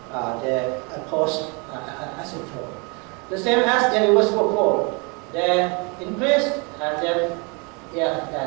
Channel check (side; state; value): left; quieter; 31.7 dB